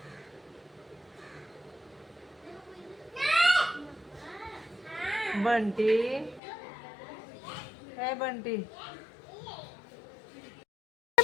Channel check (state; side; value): drops out; right; at 6.4 s